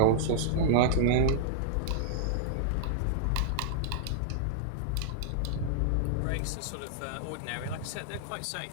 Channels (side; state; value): both; different; correlation -0.01